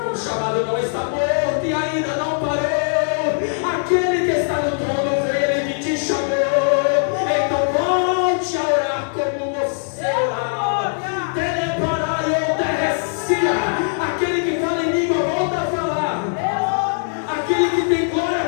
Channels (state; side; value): silent; right; digital silence